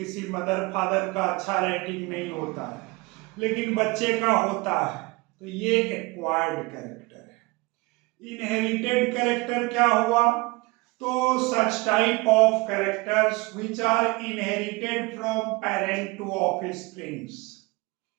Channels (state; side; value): quieter; left; 24.7 dB